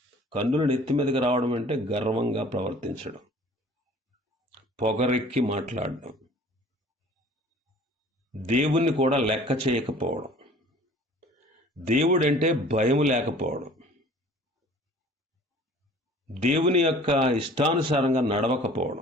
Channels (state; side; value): normal; both; correlation 0.49